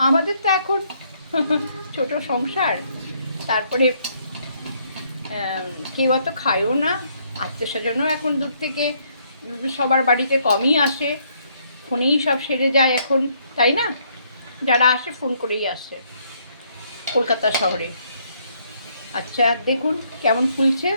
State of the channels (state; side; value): inverted; both; correlation -0.69